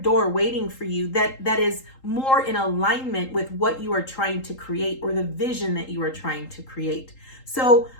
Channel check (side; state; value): right; late; 3.8 ms